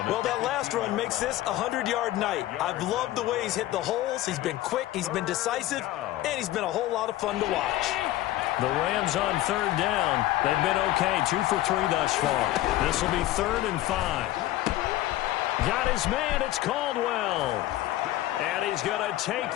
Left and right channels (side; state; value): right; quieter; 15.4 dB